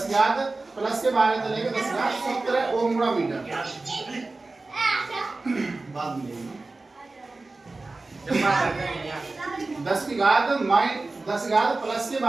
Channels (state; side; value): quieter; left; 3.4 dB